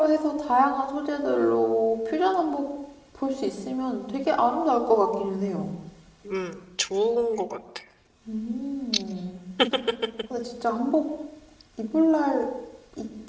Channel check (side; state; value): both; identical; correlation 1.00